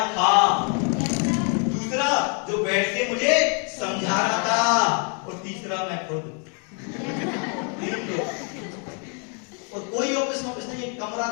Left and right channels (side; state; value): right; quieter; 39.5 dB